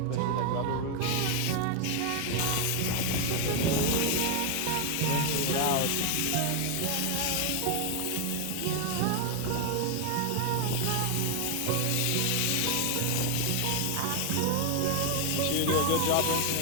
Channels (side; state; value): both; different; correlation 0.01